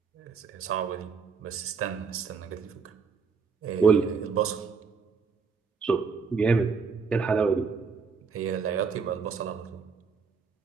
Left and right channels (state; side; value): quieter; left; 5.5 dB